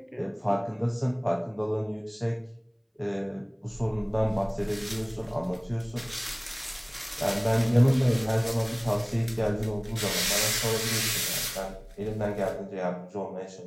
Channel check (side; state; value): both; identical; correlation 1.00